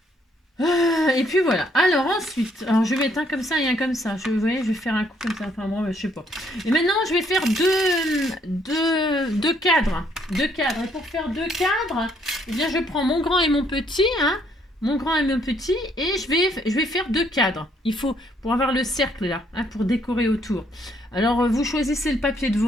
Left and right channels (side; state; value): both; normal; correlation 0.68